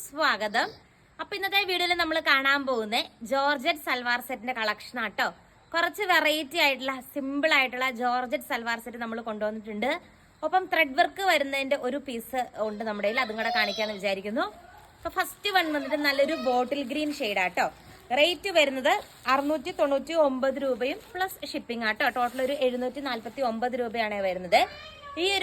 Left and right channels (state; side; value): identical; both; correlation 1.00